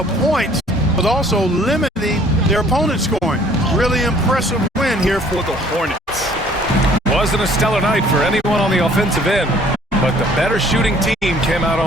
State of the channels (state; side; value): normal; both; correlation 0.57